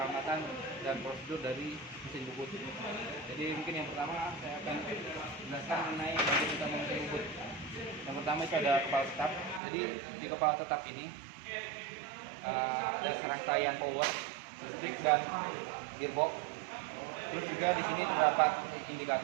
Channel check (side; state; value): left; drops out; at 9.6 s